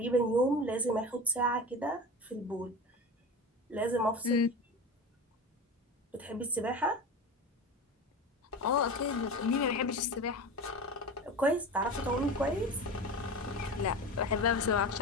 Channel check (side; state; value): both; normal; correlation 0.29